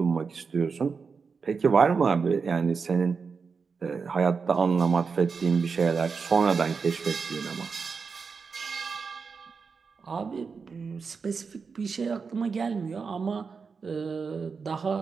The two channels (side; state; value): left; quieter; 5.3 dB